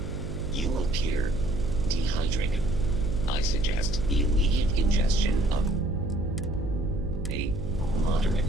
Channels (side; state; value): right; noise; hum, 4 dB below the sound